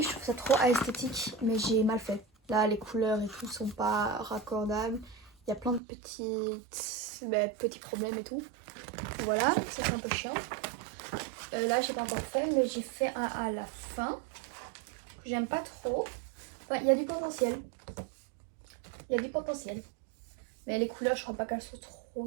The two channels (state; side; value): drops out; left; at 5.8 s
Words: je trouve ça trop esthétique, mais j'ai mal fait. Là, les couleurs et tout sont pas raccordables. Il y a plein de petits problèmes et tout. Voilà, ça c'est un peu chiant. Là, j'ai pas encore fait, mais j'ai fait un à la fin. J'aime pas trop. Enfin, il y a du potentiel. Il y a du potentiel. Mais les couleurs, je crois pas qu'elles sont